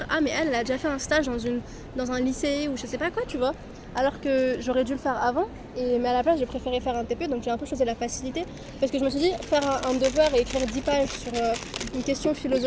ah, mais elle a déjà fait un stage dans un lycée ou je sais pas quoi, tu vois. Alors que j'aurais dû le faire avant, mais à la place, j'ai préféré faire un TP, donc j'ai un peu choisi la facilité. Parce que je me suis dit, faire un devoir et écrire 10 pages sur une question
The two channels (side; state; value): both; identical; correlation 1.00